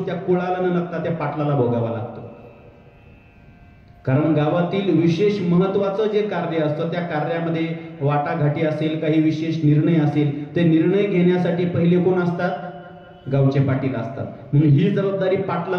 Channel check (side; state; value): both; identical; correlation 1.00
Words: त्या कुळाला न लागता त्या पाटलाला भोगावा लागतो. कारण गावातील विशेष महत्वाचं जे कार्य असतं त्या कार्यामध्ये वाटाघाटी असेल, काही विशेष निर्णय असेल, ते निर्णय घेण्यासाठी पहिले कोण असतात? गावचे पाटील असतात. म्हणून ही जबाबदारी